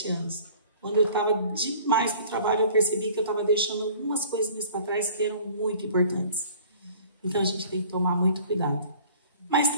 anos. Quando eu estava demais no trabalho, eu percebi que eu estava deixando algumas coisinhas para trás que eram muito importantes. Então, a gente tem que tomar muito cuidado. Mas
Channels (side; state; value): both; inverted; correlation -0.49